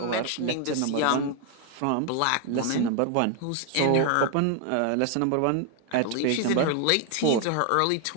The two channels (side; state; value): both; different; correlation 0.01